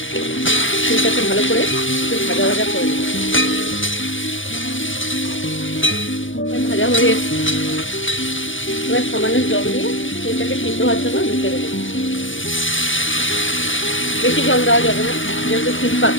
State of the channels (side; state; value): right; late; 0.56 ms